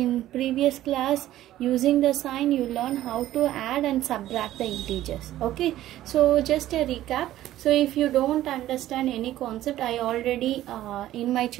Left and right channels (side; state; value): left; quieter; 13.9 dB